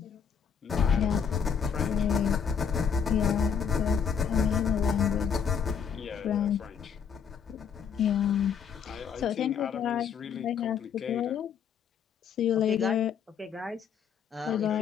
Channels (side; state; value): right; quieter; 7.1 dB